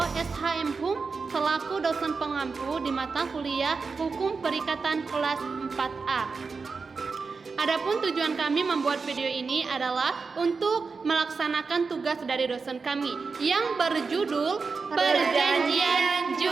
SHM HUM, selaku dosen pengampu di mata kuliah Hukum Perikatan kelas 4A. Adapun tujuan kami membuat video ini adalah untuk melaksanakan tugas dari dosen kami yang berjudul Perjanjian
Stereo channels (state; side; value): quieter; left; 4.7 dB